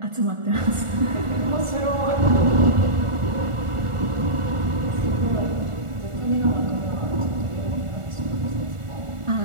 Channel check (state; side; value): late; left; 1.4 ms